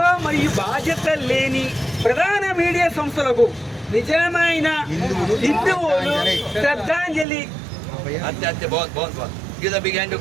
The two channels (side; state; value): left; drops out; at 7.2 s